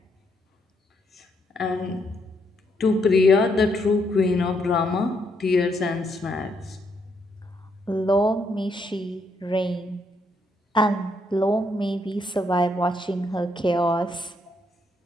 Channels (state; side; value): normal; both; correlation 0.75